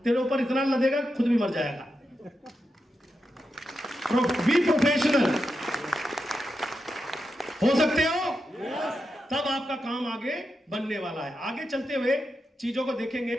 तेरे ऊपर इतना लदेगा खुद भी मर जाएगा। बी प्रोफेशनल हो सकते हो, तब आपका काम आगे बनने वाला है। आगे चलते हुए चीजों को देखेंगे।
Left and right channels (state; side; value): normal; both; correlation 0.87